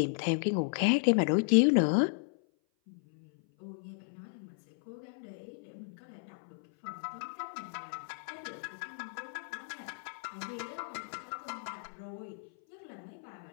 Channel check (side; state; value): right; silent; 55 dB below the other